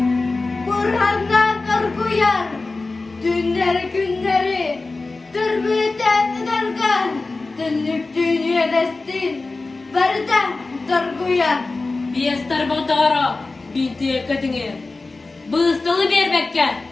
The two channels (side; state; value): right; quieter; 3.5 dB